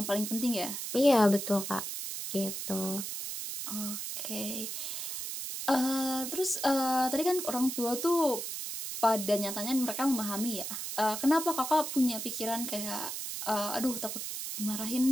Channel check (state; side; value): noise; right; hiss, 5 dB below the sound